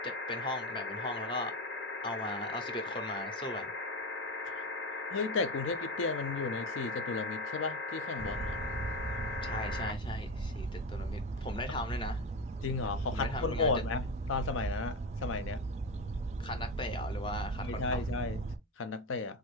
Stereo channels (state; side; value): normal; both; correlation 0.19